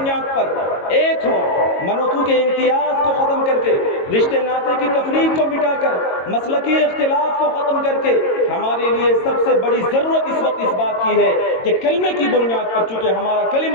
پر ایک ہوں. منوتو کے امتیاز کو ختم کر کے، رشتے ناطے کی تفریق کو مٹا کر، مسلکی اختلاف کو ختم کر کے، ہمارے لیے سب سے بڑی ضرورت اس وقت اس بات کی ہے کہ کلمے کی بنیاد پر، چونکہ ہمارا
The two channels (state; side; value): late; right; 22 ms